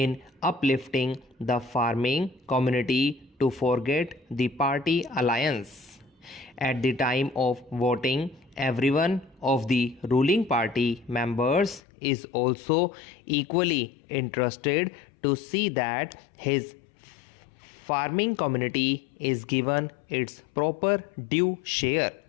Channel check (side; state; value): right; drops out; at 11.8 s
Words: uplifting the farming community to forget the party alliance. At the time of voting, everyone of the ruling party members is also equally interested to see that his farming community is given its proper due share.